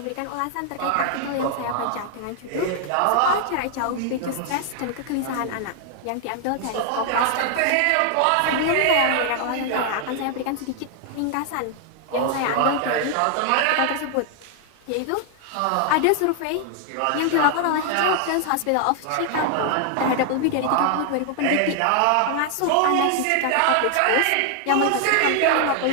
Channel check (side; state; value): both; different; correlation 0.00